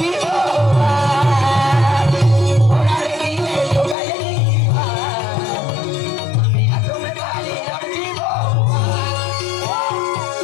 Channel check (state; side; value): drops out; right; at 4.0 s